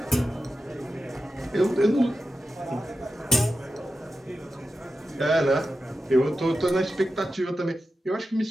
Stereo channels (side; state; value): both; normal; correlation 0.91